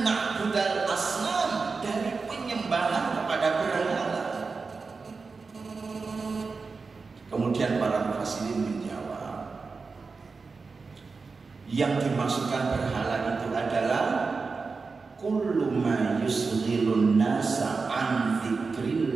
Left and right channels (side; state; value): left; quieter; 4.5 dB